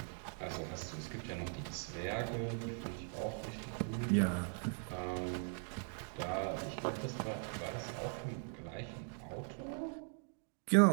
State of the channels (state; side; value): silent; left; 51 dB below the other